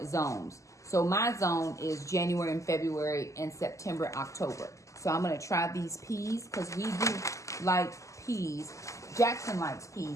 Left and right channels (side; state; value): right; late; 0.16 ms